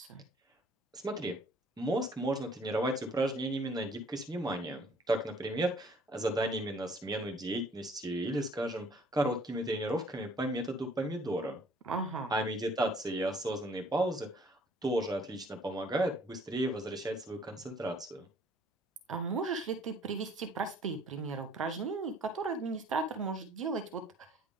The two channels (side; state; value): both; normal; correlation 0.59